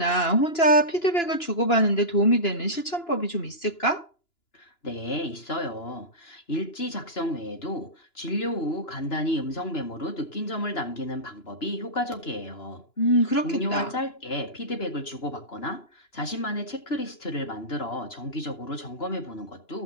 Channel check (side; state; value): right; late; 2.9 ms